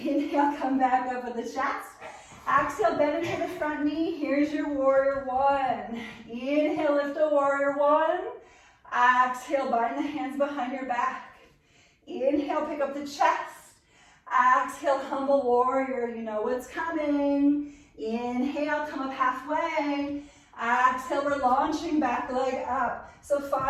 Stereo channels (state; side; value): identical; both; correlation 1.00